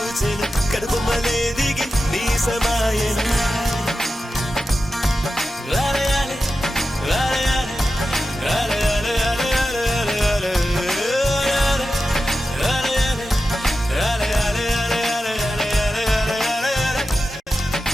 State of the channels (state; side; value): normal; both; correlation 0.92